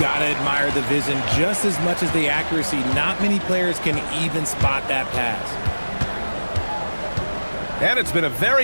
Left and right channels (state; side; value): inverted; both; correlation -1.00